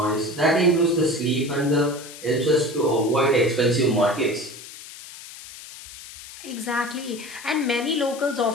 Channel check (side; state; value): left; noise; hiss, 15 dB below the sound